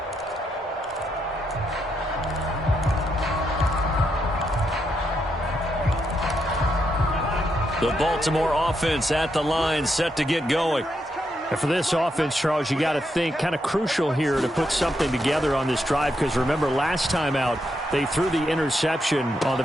The Baltimore offense at the line, set to get going. And for this offense, Charles, you got to think kind of crucial here to put something together on this drive, because remember last time out they threw the interception on the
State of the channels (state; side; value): normal; both; correlation 0.80